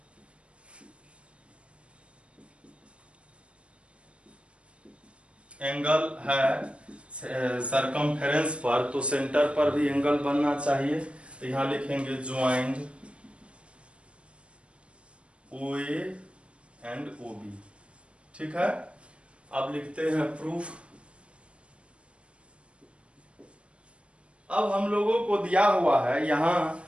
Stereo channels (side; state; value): left; late; 0.059 ms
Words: एंगल है सरकमफेरेंस पर, तो सेंटर पर भी एंगल बनना चाहिए। तो यहां लिखेंगे ज्वाइंट OA एंड OB। ठीक है, अब लिखते हैं प्रूफ। अब हम लोगों को दिया हुआ है, यहां